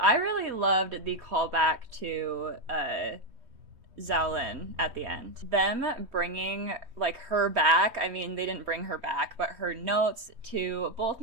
really loved the callback to Xiaolin at the end. Them bringing, like, her back. I mean, they didn't bring her back, but her notes to both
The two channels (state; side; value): late; left; 3.1 ms